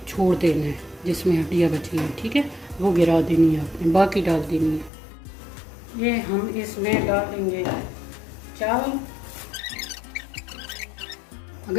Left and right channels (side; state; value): right; drops out; at 4.9 s